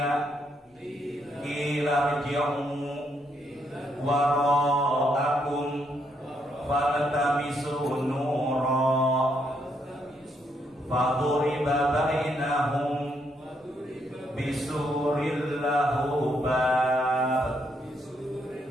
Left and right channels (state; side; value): normal; both; correlation 0.75